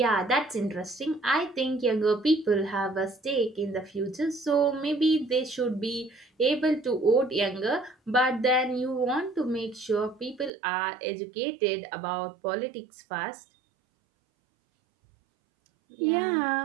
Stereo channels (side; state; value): left; drops out; at 10.5 s